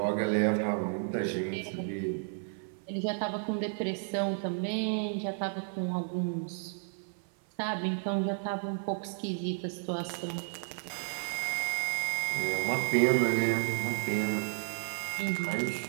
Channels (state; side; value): silent; left; 56 dB below the other